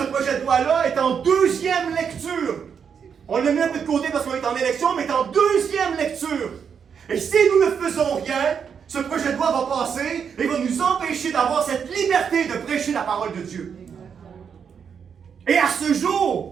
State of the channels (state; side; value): quieter; left; 7.0 dB